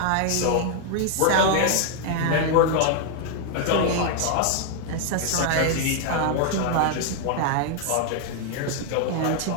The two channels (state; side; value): different; both; correlation 0.00